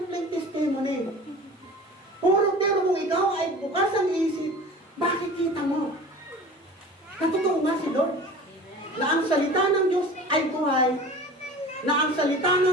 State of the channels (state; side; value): normal; both; correlation 0.39